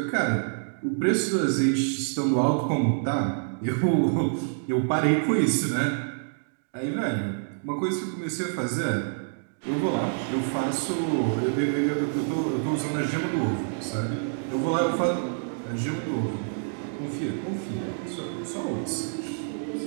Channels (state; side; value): silent; left; digital silence